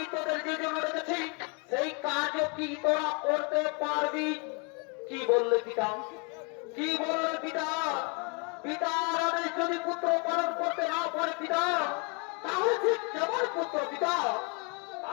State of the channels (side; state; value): right; quieter; 33.9 dB